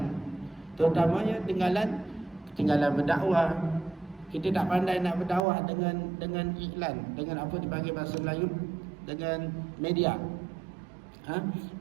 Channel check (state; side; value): drops out; left; at 5.4 s